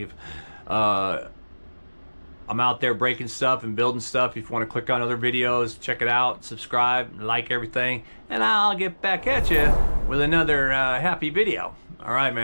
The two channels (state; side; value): inverted; both; correlation -1.00